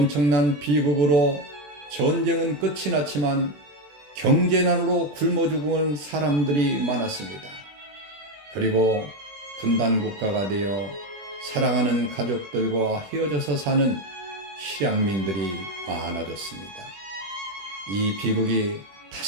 비극으로 전쟁은 끝이 났지만 경제난으로 굶어 죽은 사람들이 많았습니다. 그리고 분단국가가 되어 사랑하는 가족들과 헤어져서 사는 실향민들이 많아졌습니다. 이 비극이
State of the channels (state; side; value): late; left; 21 ms